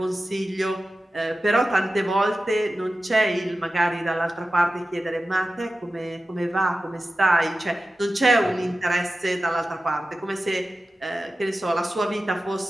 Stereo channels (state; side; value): normal; both; correlation 0.94